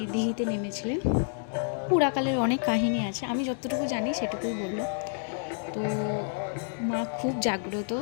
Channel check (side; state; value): right; silent; 59 dB below the other